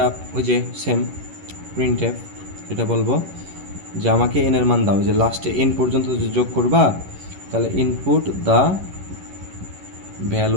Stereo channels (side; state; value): left; late; 11 ms